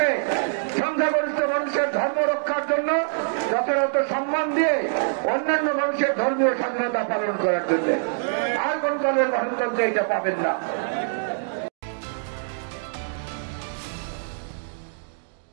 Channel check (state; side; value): silent; left; digital silence